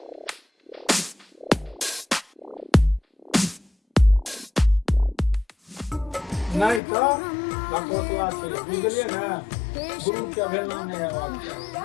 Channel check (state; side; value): drops out; right; at 6.8 s